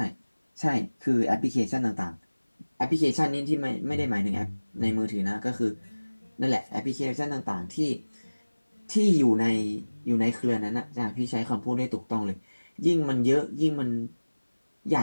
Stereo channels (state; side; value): inverted; both; correlation -1.00